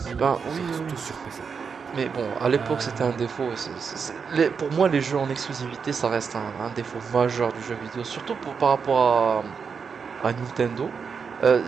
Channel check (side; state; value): left; quieter; 5.9 dB